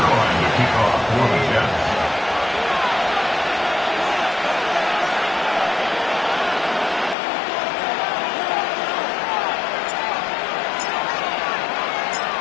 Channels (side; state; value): right; drops out; at 7.2 s